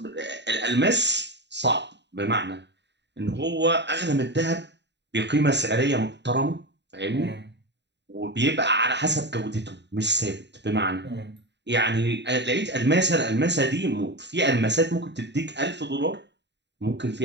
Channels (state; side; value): late; left; 0.51 ms